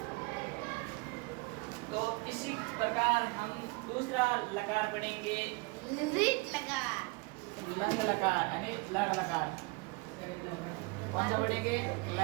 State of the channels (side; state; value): left; quieter; 27.2 dB